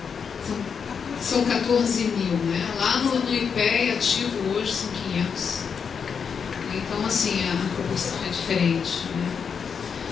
São 14 mil, né? Lá no IPEA ativo hoje são 500. Então, assim, a proporção é diferente, né?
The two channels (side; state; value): right; quieter; 6.4 dB